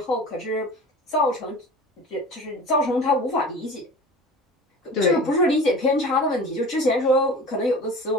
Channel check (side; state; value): both; normal; correlation 0.38